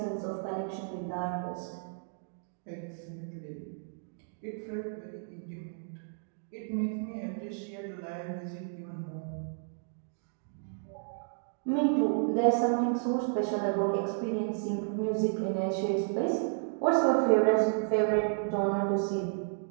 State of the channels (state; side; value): silent; left; digital silence